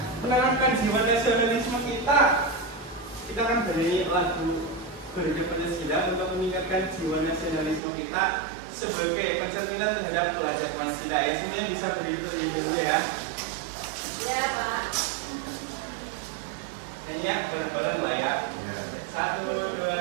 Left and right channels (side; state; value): left; drops out; at 7.8 s